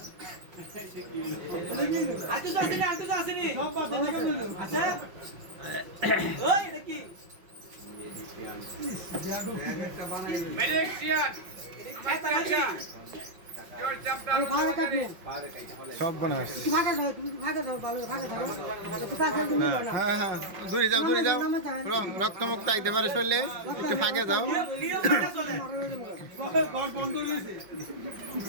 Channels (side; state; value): left; late; 5.5 ms